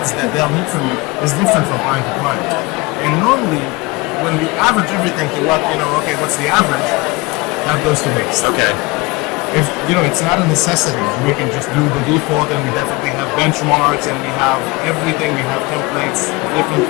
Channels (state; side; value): quieter; right; 24.1 dB